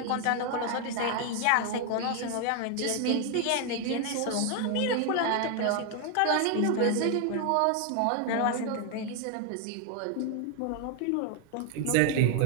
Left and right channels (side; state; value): both; different; correlation 0.01